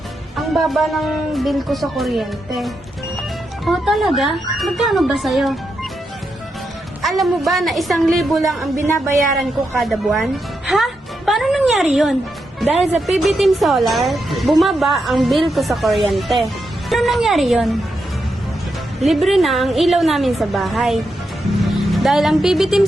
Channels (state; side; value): normal; both; correlation 0.85